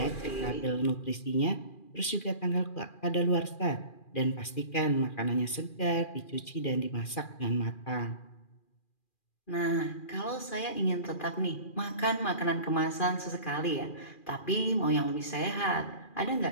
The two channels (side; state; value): right; late; 2.4 ms